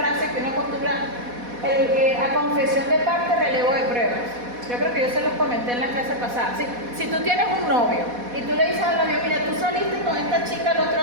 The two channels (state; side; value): late; left; 4.1 ms